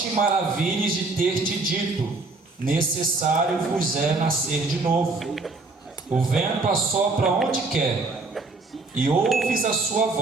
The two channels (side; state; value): left; quieter; 3.6 dB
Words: maravilhes de ter te dito: necessário vos é nascer de novo. O vento assopra onde quer, e ouves a sua